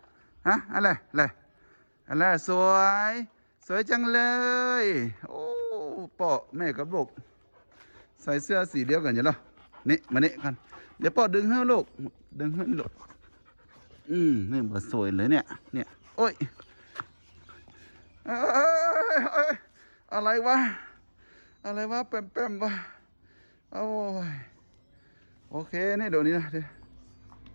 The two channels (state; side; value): inverted; both; correlation -1.00